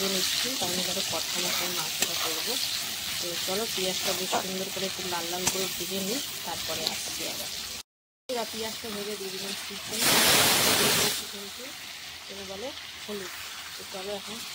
নিচ্ছি, কারণ এবারে কথা মতন মাংসটা করবো। তো চলো পেঁয়াজটা বেশ সুন্দর করে একটু লাল লাল করে ভেজে নিই, তারপরে আসছি আবার। পেঁয়াজটা ভেজে দিয়ে দিলাম চিকেন, কিন্তু এটা বলে হলুদ। তো চলো এখন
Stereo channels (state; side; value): identical; both; correlation 1.00